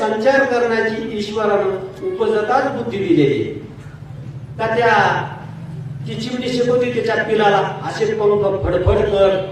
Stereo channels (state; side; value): identical; both; correlation 1.00